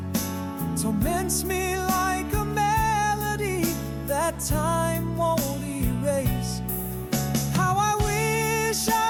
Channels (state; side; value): identical; both; correlation 1.00